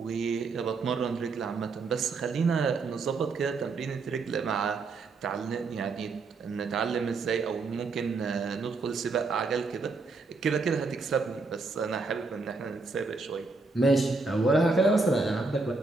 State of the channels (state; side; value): quieter; left; 3.9 dB